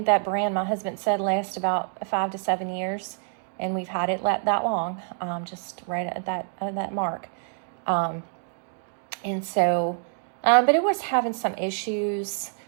that brand, my husband said, lasts about 5 to 7 years, and we've had it that long, just right at that mark. And so, but it was having some issues.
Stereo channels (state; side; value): silent; left; 60 dB below the other